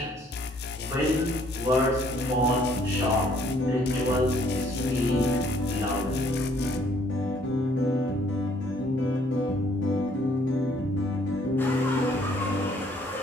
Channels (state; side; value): normal; both; correlation 0.63